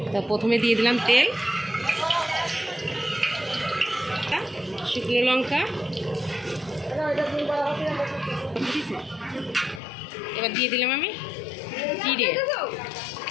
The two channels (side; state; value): right; drops out; at 9.8 s